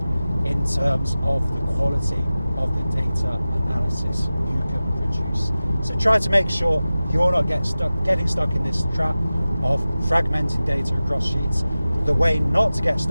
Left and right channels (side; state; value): both; inverted; correlation -0.96